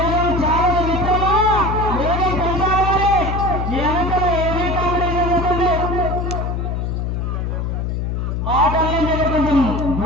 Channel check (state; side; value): noise; left; hum, 1 dB below the sound